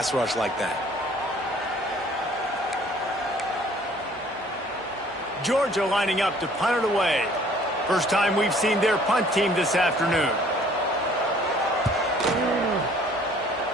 rush like that. Georgia lining up to punt it away. First time we've seen their punt team this afternoon.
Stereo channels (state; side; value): normal; both; correlation 0.56